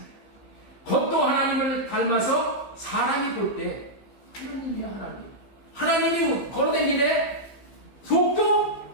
겉도 하나님을 닮아서 사람이 볼 때 하나님이야, 하나님. 하나님이 걸어다니네. 속도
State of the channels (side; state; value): right; late; 15 ms